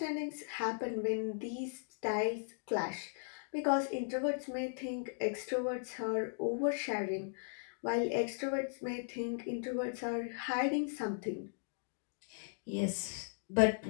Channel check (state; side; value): silent; right; digital silence